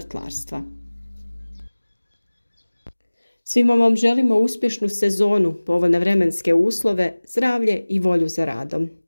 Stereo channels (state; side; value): inverted; both; correlation -1.00